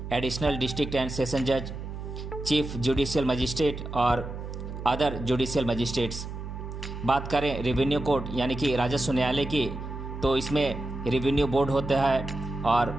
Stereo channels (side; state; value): right; noise; hum, 8 dB below the sound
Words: एडिशनल डिस्ट्रिक्ट एंड सेशन जज, चीफ जुडिशियल मजिस्ट्रेट और अदर जुडिशियल मजिस्ट्रेट्स। बात करें रेवेन्यू कोर्ट यानी कि राजस्व न्यायालय की, तो इसमें रेवेन्यू बोर्ड होता है और